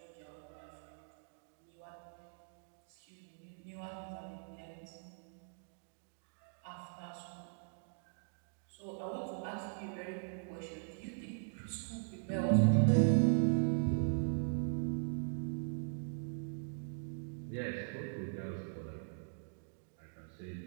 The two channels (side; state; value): left; silent; digital silence